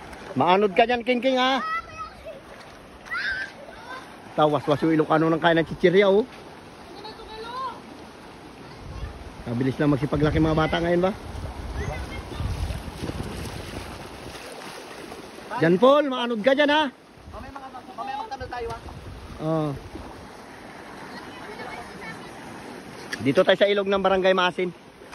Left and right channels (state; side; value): identical; both; correlation 1.00